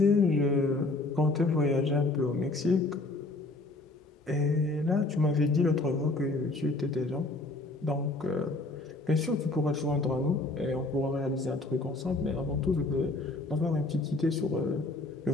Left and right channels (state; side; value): quieter; right; 3.0 dB